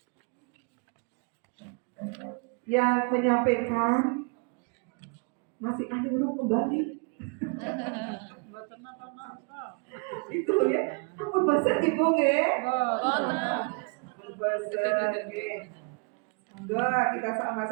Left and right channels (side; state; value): left; quieter; 35.2 dB